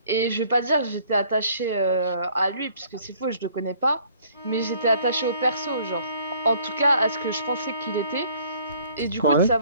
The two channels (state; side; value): inverted; both; correlation -0.58